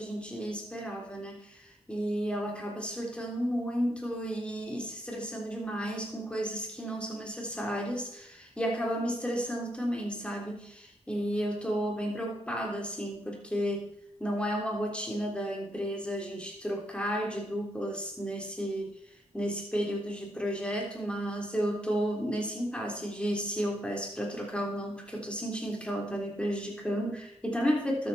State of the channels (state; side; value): normal; both; correlation 0.78